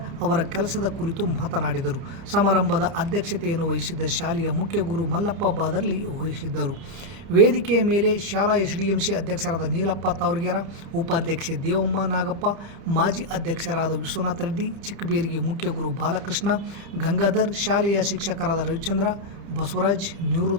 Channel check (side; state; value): left; late; 30 ms